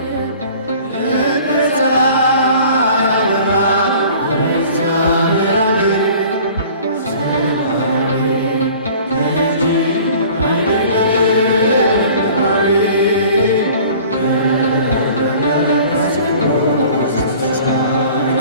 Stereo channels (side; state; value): both; inverted; correlation -0.47